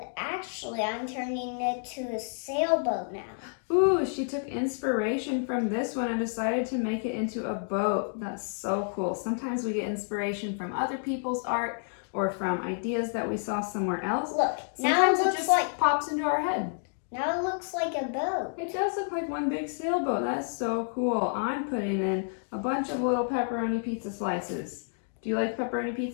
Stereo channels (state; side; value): silent; right; digital silence